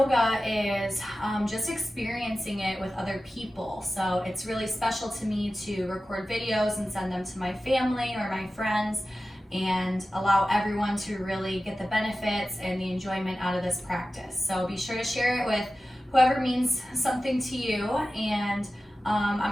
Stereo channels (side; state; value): both; normal; correlation 0.95